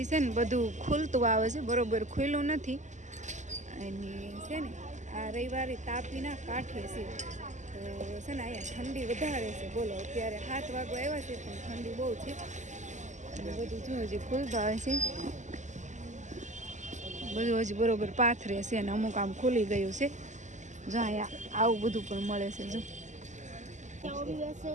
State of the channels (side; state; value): left; late; 0.34 ms